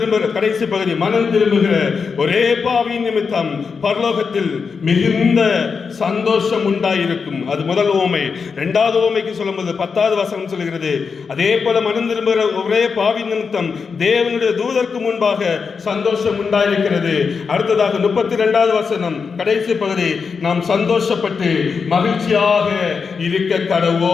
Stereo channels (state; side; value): quieter; right; 5.5 dB